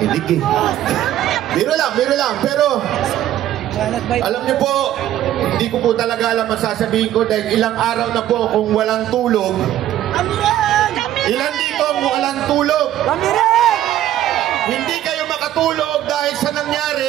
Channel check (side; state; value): left; quieter; 12.6 dB